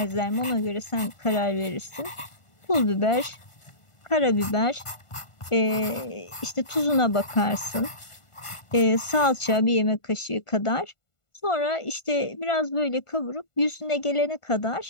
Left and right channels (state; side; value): late; right; 1.5 ms